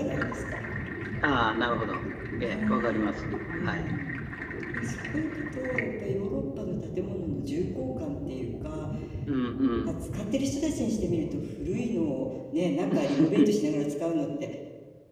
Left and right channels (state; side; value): identical; both; correlation 1.00